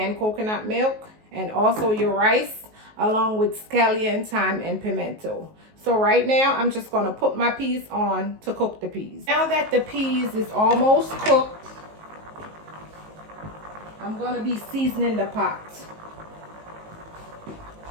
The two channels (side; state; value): left; late; 19 ms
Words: coconut milk. And also your rice, along with scallion, thyme, and pimento. So right now, I'm just going to put my peas on to cook the peas. Now that the peas is almost cooked, I'm going to be seasoning the pot.